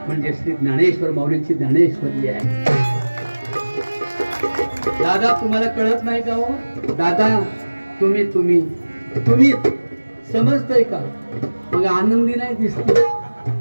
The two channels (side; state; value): both; inverted; correlation -1.00